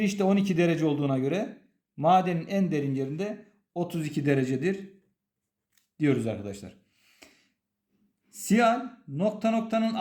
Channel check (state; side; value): identical; both; correlation 1.00